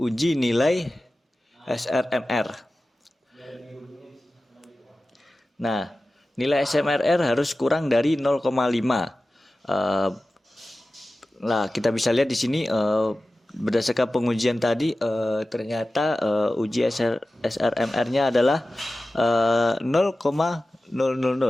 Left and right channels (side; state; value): both; normal; correlation 0.95